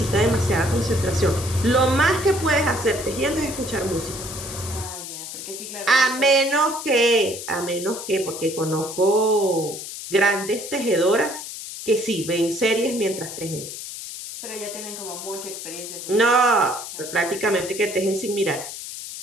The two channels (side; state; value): left; noise; hiss, 9 dB below the sound